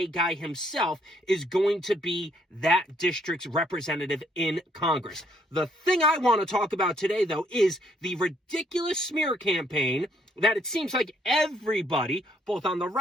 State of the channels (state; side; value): normal; both; correlation 0.68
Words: guy himself, is going to be that district's representative in Congress. The thing I want to talk about today, though, is the ridiculous smear campaign that it seems like everybody, both on the